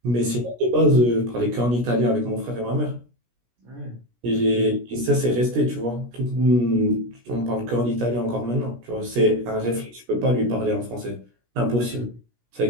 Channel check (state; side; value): late; left; 17 ms